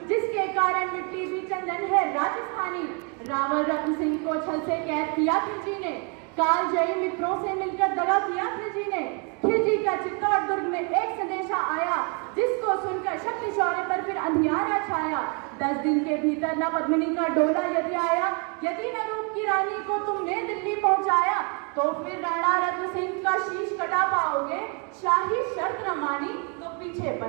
जिसके कारण मिट्टी भी चंदन है राजस्थानी। रावण रत्न सिंह को छल से कैद किया खिलजी ने, कालजयी मित्रों से मिलकर दगा किया खिलजी ने। खिलजी का चित्तौड़ दुर्ग में एक संदेशा आया, जिसको सुनकर शक्ति शौर्य पर फिर अंधियारा छाया। 10 दिन के भीतर न पद्मिनी का डोला यदि आया, यदि न रूप की रानी को तुमने दिल्ली पहुंचाया, तो फिर राणा रत्न सिंह का शीश कटा पाओगे। शाही शर्त न मानी तो पीछे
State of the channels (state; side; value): quieter; left; 35.6 dB